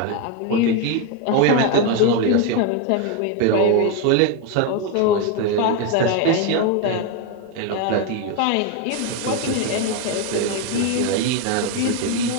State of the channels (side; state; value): both; different; correlation 0.02